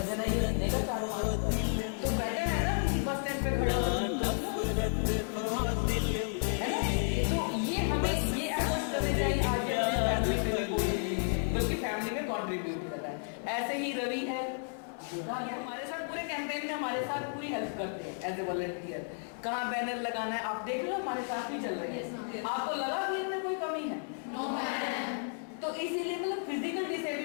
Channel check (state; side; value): silent; right; 56 dB below the other